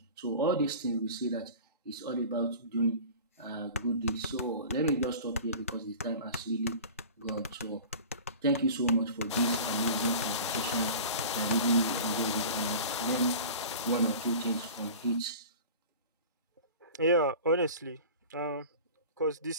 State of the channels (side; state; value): both; inverted; correlation -0.38